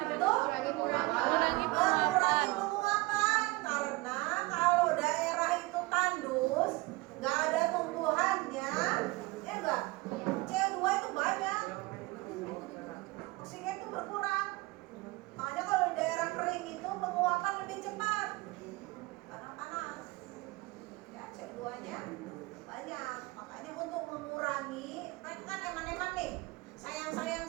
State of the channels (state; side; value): quieter; left; 22.2 dB